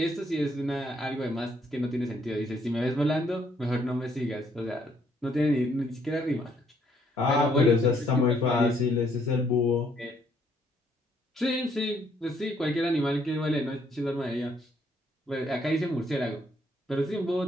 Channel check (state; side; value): normal; both; correlation 0.69